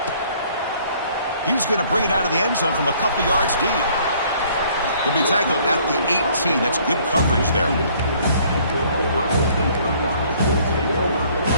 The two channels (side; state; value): both; inverted; correlation -0.60